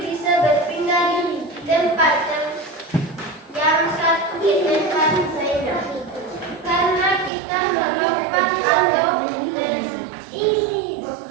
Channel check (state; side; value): drops out; left; at 7.3 s